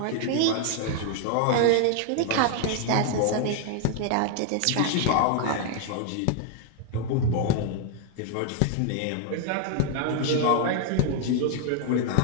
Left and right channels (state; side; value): different; both; correlation 0.00